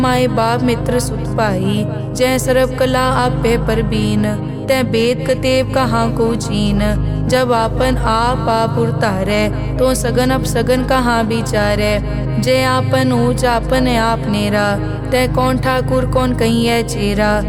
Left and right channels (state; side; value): identical; both; correlation 1.00